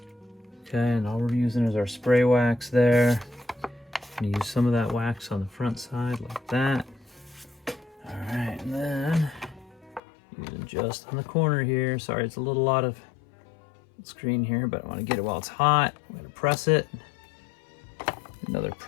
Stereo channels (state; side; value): drops out; right; at 10.0 s